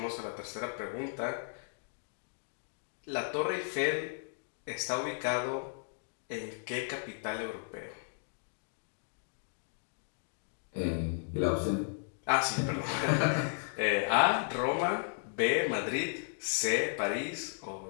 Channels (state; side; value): silent; right; digital silence